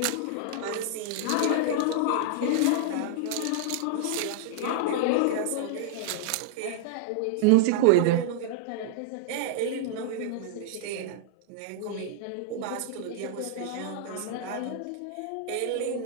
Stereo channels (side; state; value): both; different; correlation -0.01